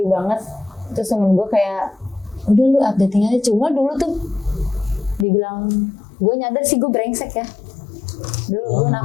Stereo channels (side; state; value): right; drops out; at 5.2 s